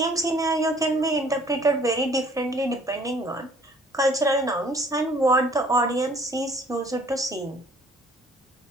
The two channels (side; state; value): both; normal; correlation 0.56